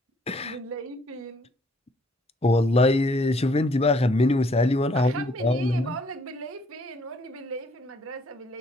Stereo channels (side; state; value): both; normal; correlation 0.64